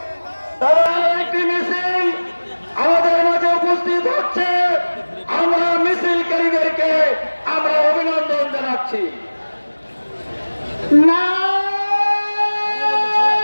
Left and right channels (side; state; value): both; inverted; correlation -1.00